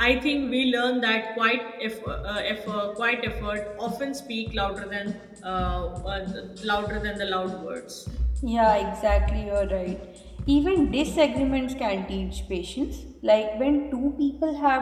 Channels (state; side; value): identical; both; correlation 1.00